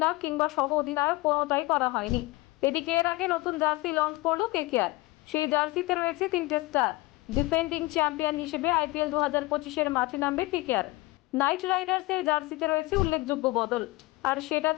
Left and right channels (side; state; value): right; quieter; 21.2 dB